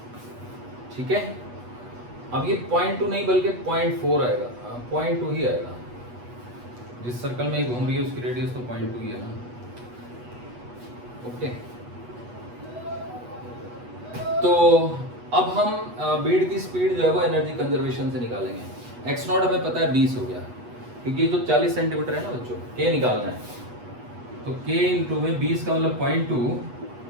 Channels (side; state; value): left; late; 8.2 ms